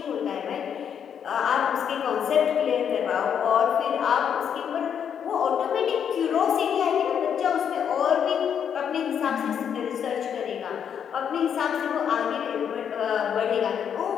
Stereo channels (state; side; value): quieter; right; 8.1 dB